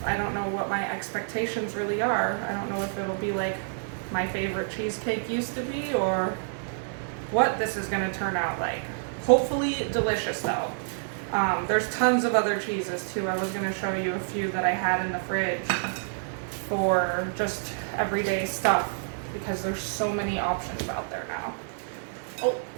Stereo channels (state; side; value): silent; left; digital silence